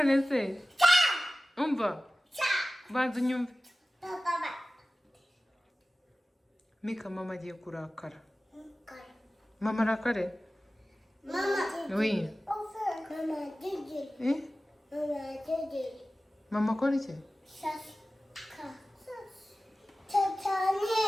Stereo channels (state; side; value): normal; both; correlation 0.96